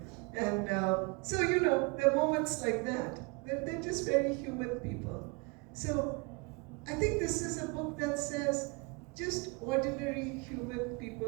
And so, there are moments like that. They're just very human people. So I think this is a book that says just ordinary human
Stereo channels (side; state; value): left; quieter; 29.0 dB